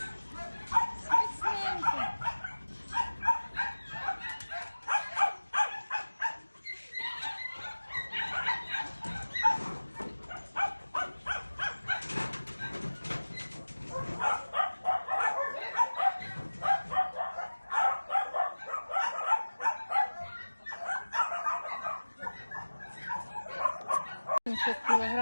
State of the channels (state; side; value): inverted; both; correlation -1.00